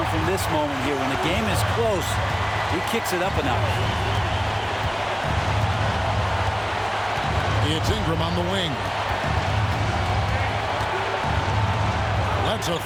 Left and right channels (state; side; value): identical; both; correlation 1.00